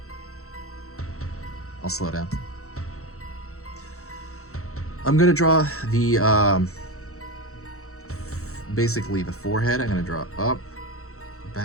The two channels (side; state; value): right; late; 0.64 ms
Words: I'll slow down. I'm gonna draw the basically the forehead. I'm gonna draw up,